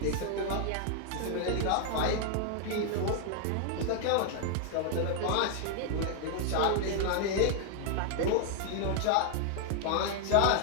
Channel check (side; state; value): both; different; correlation 0.00